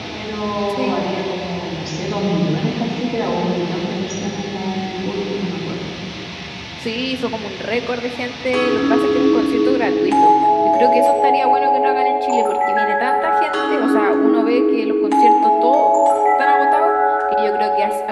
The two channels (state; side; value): identical; both; correlation 1.00